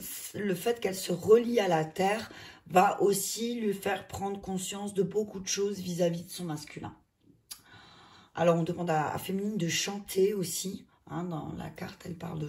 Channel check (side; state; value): both; identical; correlation 1.00